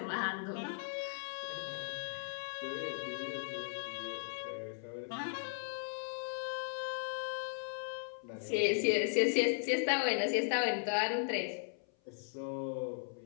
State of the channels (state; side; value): silent; right; 53 dB below the other